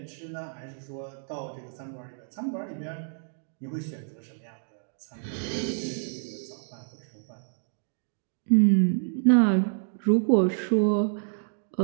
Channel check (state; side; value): silent; left; digital silence